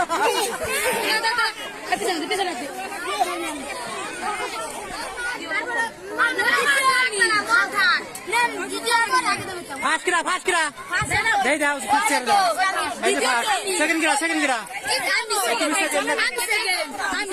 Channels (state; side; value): identical; both; correlation 1.00